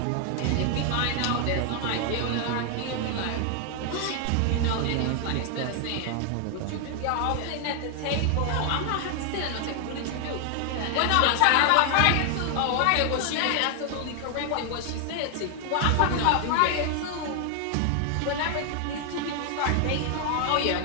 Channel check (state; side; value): different; both; correlation 0.00